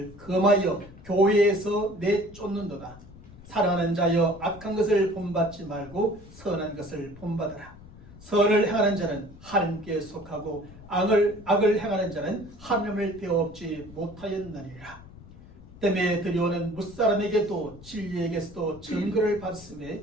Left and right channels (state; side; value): noise; left; rumble, 19 dB below the sound